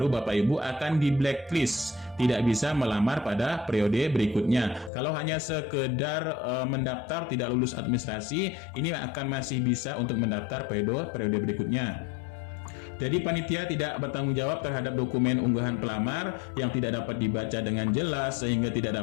Bapak Ibu akan di blacklist, tidak bisa melamar pada periode berikutnya. Kalau hanya sekedar mendaftar tidak lulus administrasi, ini akan masih bisa untuk mendaftar periode berikutnya. Jadi panitia tidak bertanggung jawab terhadap dokumen unggahan pelamar yang tidak dapat dibaca dengan jelas sehingga tidak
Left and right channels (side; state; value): right; drops out; at 4.9 s